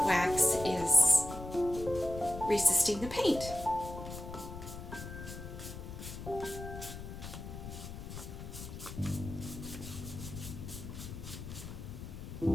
wax is resisting the paint.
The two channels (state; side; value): noise; left; rumble, 10 dB below the sound